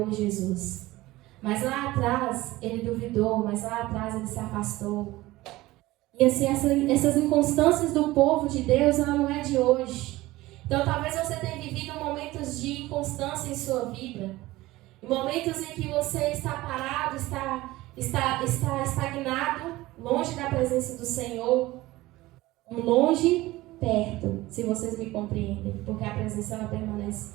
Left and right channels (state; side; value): quieter; left; 18.4 dB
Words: Jesus. Mas lá atrás ele duvidou, mas lá atrás ele se afastou. E assim, essas inconstâncias do povo de Deus, ela não é de hoje. Então talvez você tenha vivido momentos de inconstância em sua vida. Momentos em que você está parado, está estagnado, longe da presença do Senhor. Longe, perto, se vocês me compreendem. Porque a presença ela permanece